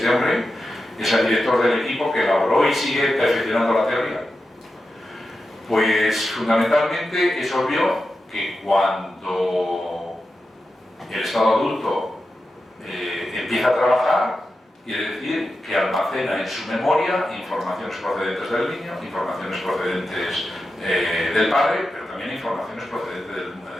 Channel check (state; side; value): normal; both; correlation 0.90